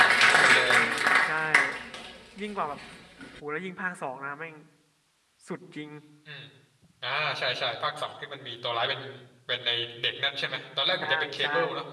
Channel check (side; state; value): both; identical; correlation 1.00